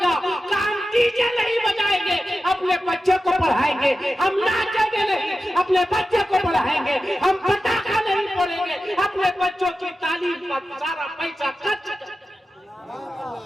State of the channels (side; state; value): both; normal; correlation 0.93